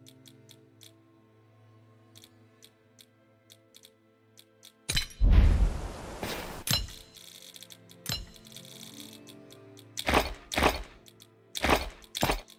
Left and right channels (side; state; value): both; identical; correlation 1.00